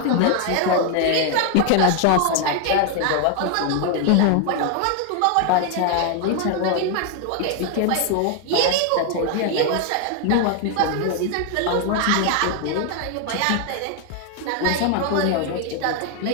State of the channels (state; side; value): different; both; correlation 0.00